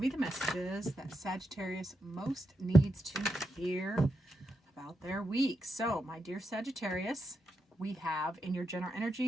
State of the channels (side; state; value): both; normal; correlation 0.84